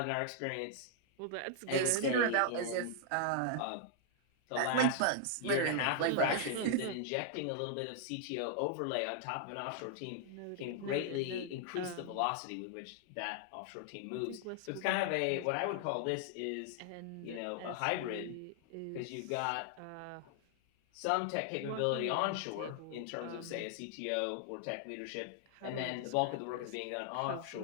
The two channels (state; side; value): different; both; correlation -0.01